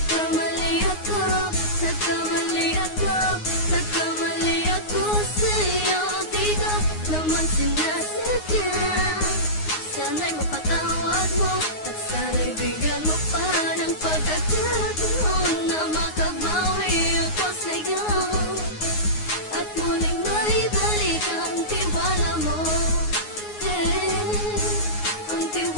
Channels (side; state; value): right; late; 9.6 ms